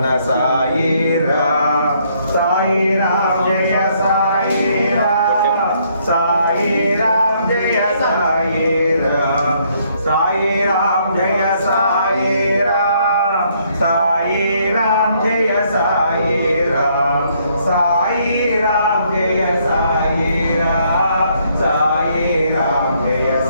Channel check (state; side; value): inverted; both; correlation -0.69